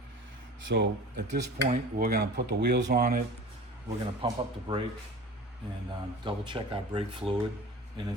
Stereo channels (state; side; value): normal; both; correlation 0.38